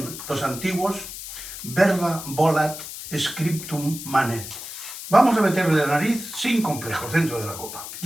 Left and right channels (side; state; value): left; noise; hiss, 10 dB below the sound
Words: los antiguos? Verba volat scriptum manet. Vamos a meterle la nariz sin complejos dentro de la copa.